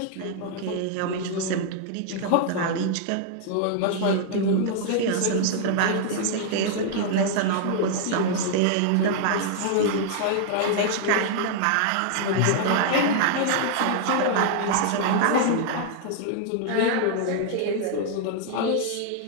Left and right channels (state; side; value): different; both; correlation -0.01